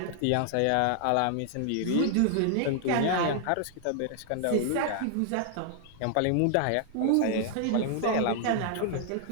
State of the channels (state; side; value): different; both; correlation 0.00